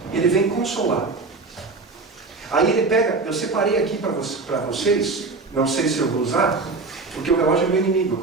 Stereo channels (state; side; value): quieter; left; 3.9 dB